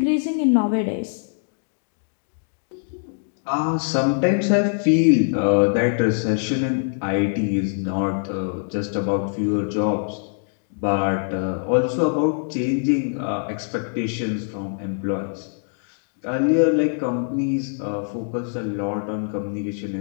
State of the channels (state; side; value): silent; right; digital silence